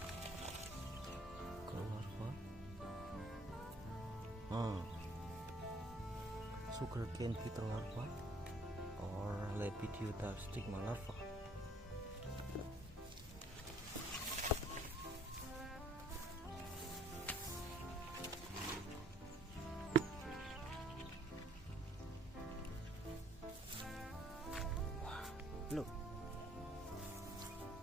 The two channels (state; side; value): normal; both; correlation 0.60